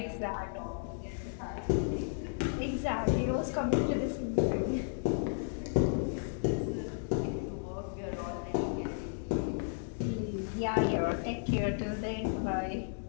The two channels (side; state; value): right; silent; digital silence